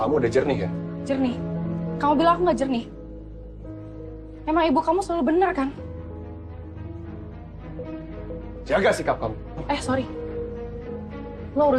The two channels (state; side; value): identical; both; correlation 1.00